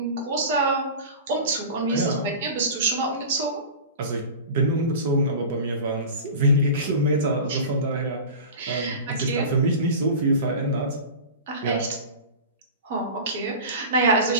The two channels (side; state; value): both; inverted; correlation -0.33